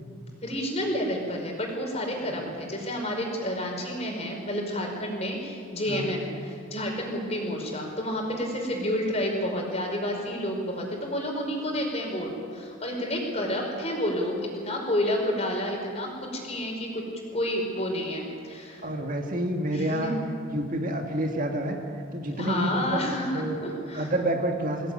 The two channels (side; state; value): both; normal; correlation 0.37